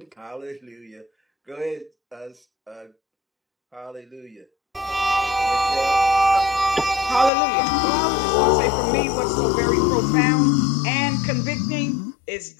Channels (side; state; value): right; drops out; at 7.3 s